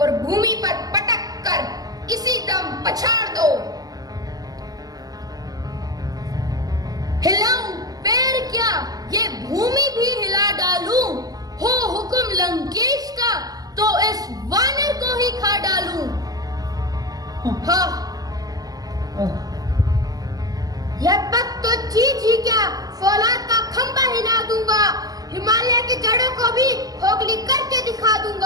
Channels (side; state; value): left; late; 0.18 ms